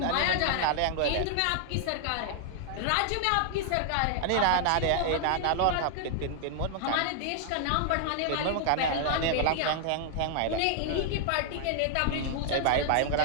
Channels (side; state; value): both; different; correlation 0.00